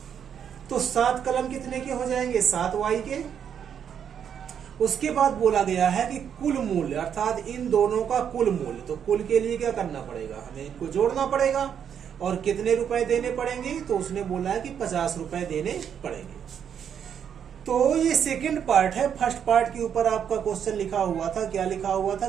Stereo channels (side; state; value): left; quieter; 8.3 dB